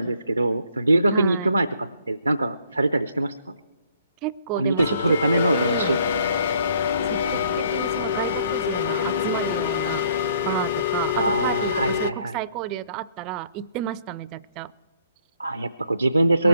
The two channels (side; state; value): both; inverted; correlation -0.63